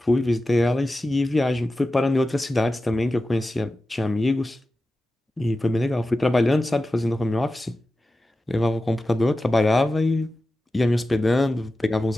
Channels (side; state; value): both; normal; correlation 0.93